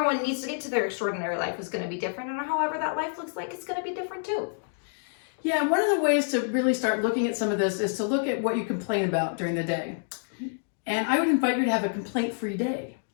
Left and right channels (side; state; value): right; silent; digital silence